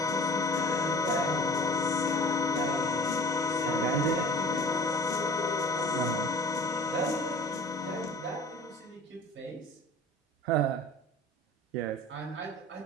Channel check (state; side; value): normal; both; correlation 0.44